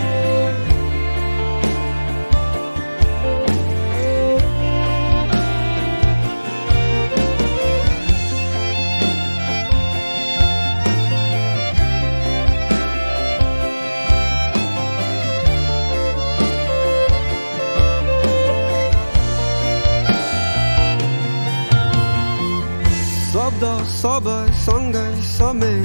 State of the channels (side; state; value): both; inverted; correlation -1.00